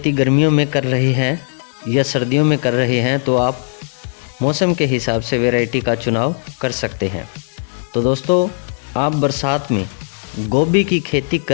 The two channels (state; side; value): silent; right; 68 dB below the other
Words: गर्मियों में कर रहे हैं या सर्दियों में कर रहे हैं तो आप मौसम के हिसाब से वैरायटी का चुनाव कर सकते हैं। तो दोस्तों, आप बरसात में गोभी की खेती